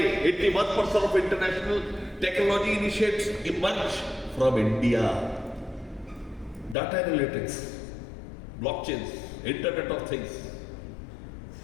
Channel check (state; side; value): drops out; right; at 6.8 s